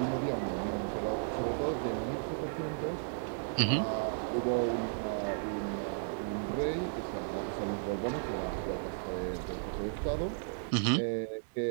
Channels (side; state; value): left; silent; digital silence